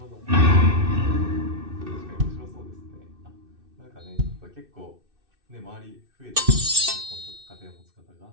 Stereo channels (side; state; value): left; late; 2.6 ms